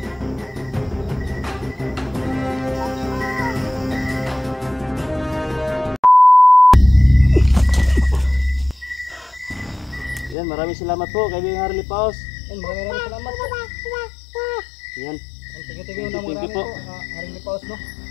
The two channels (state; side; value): drops out; right; at 10.4 s